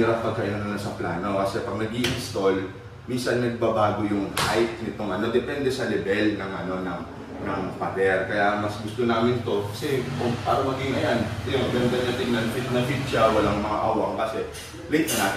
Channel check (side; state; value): both; identical; correlation 1.00